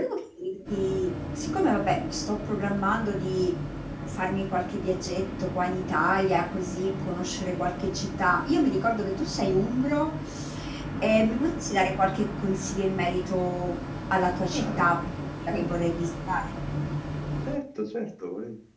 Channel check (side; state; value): both; identical; correlation 1.00